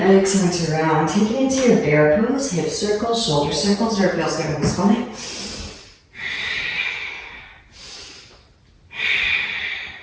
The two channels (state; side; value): identical; both; correlation 1.00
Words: And exhale to round. Take it into your bear pose, hip circles, shoulder circles, where it feels good in the spine.